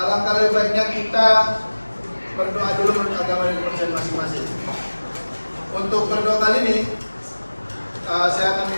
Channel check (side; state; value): both; inverted; correlation -1.00